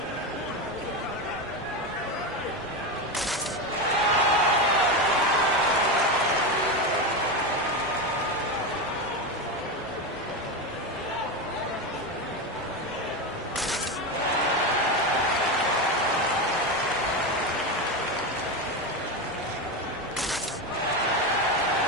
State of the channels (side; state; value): both; normal; correlation 0.15